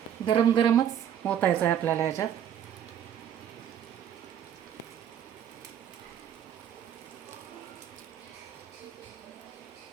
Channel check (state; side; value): quieter; left; 9.7 dB